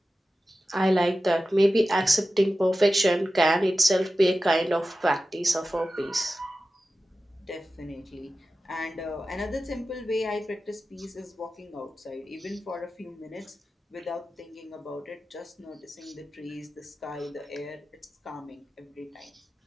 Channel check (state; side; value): normal; both; correlation 0.94